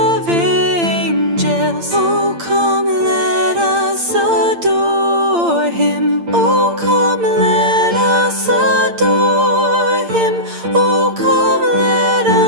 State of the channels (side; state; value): left; late; 8.8 ms